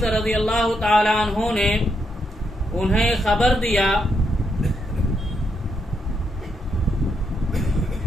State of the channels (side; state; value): both; normal; correlation 0.79